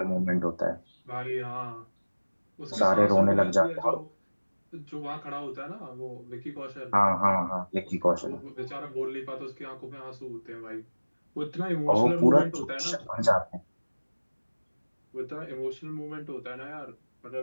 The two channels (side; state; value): both; inverted; correlation -1.00